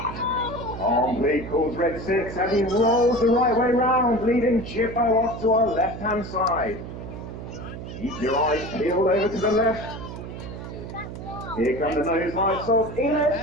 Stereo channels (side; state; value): right; noise; hum, 10 dB below the sound